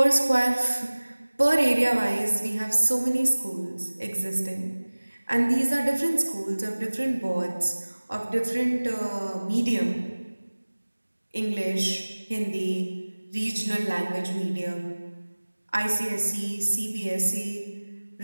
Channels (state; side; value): inverted; both; correlation -1.00